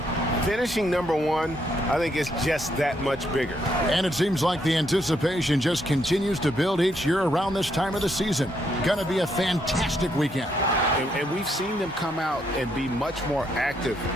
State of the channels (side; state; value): both; normal; correlation 0.75